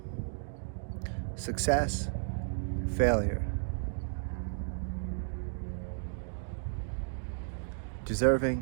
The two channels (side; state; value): left; silent; digital silence